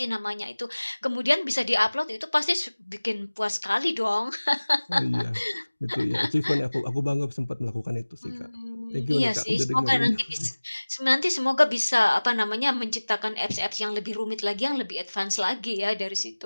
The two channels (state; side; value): inverted; both; correlation -1.00